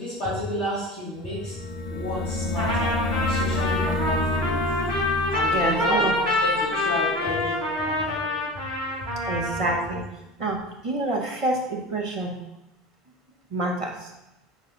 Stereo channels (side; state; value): both; normal; correlation 0.32